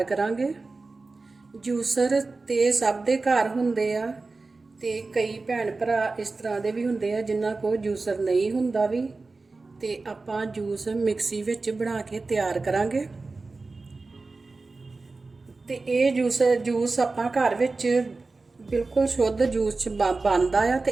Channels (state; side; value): quieter; left; 3.7 dB